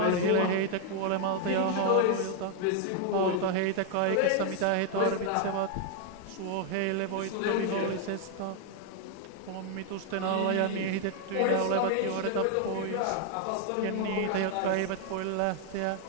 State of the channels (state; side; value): different; both; correlation 0.00